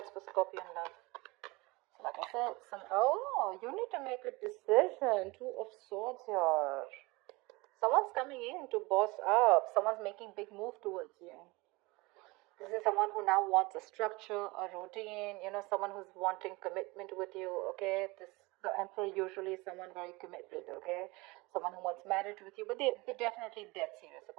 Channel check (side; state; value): left; quieter; 23.9 dB